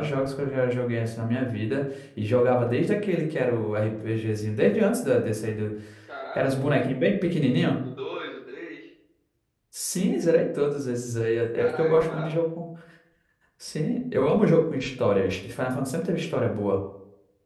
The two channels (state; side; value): identical; both; correlation 1.00